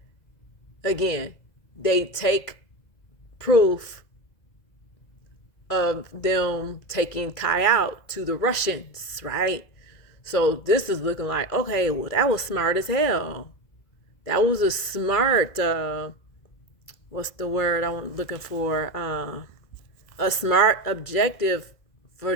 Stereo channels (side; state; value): right; late; 2.0 ms